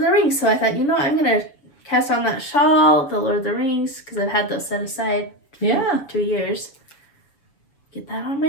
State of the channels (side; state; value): right; late; 7.2 ms